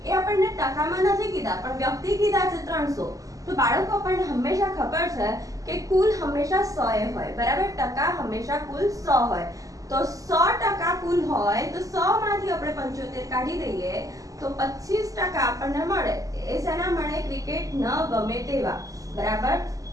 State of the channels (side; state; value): left; late; 0.17 ms